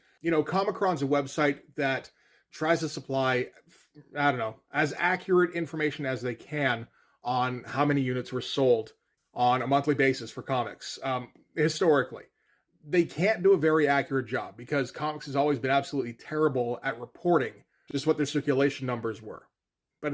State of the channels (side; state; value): both; identical; correlation 1.00